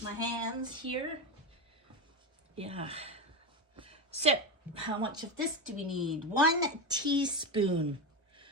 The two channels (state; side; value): normal; both; correlation 0.16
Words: my hands here. Yeah. So, how much of this do we need? 1 teaspoon.